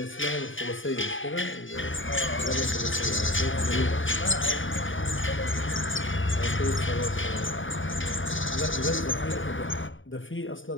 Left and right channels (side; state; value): right; late; 0.57 ms